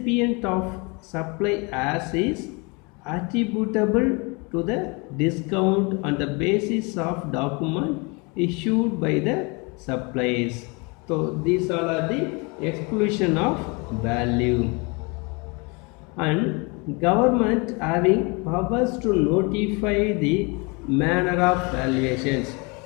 of supply as is attributable to the discount on the basis of document issued by the suppliers. So these all are the exclusion of value. And government having powers to notify the manner of valuations.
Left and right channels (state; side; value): quieter; right; 29.9 dB